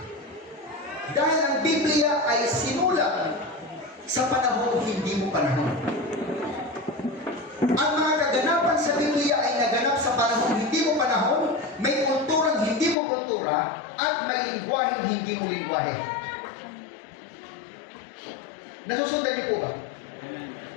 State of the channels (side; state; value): right; drops out; at 13.0 s